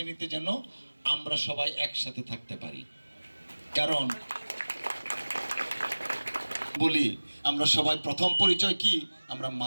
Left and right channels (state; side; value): inverted; both; correlation -1.00